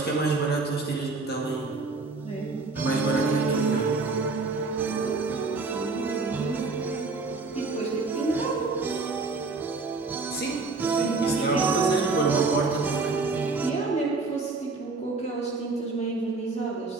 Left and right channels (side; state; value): left; quieter; 3.8 dB